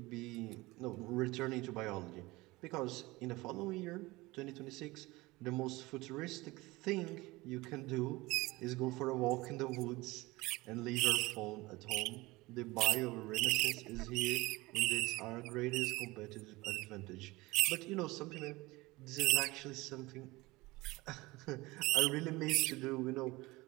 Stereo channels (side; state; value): left; quieter; 21.3 dB